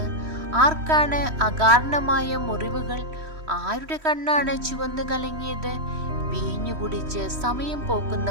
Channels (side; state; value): left; late; 3.1 ms